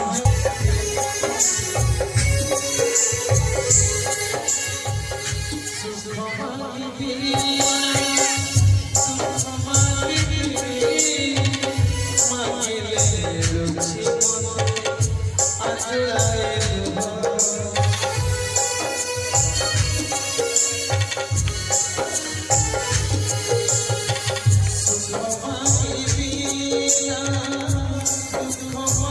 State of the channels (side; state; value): both; identical; correlation 1.00